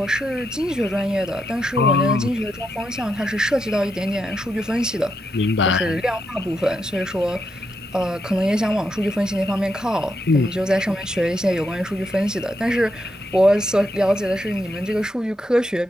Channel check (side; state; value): both; normal; correlation 0.82